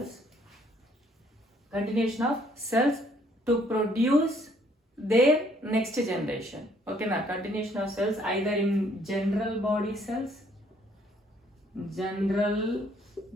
Continuation of cells to produce their next generation. Okay, now continuation of cells either in general body cells,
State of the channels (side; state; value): both; normal; correlation 0.64